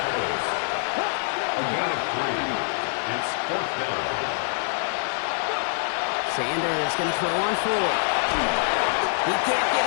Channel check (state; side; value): silent; right; digital silence